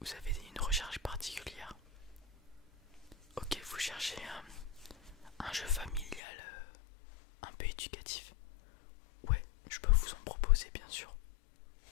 Vous avez une recherche particulière? Ok, vous cherchez un jeu familial un peu éducatif? Ouais, je peux vous en proposer, bien sûr.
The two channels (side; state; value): right; drops out; at 6.2 s